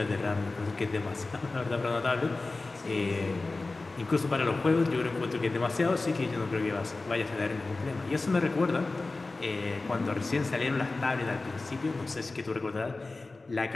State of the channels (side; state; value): right; quieter; 3.4 dB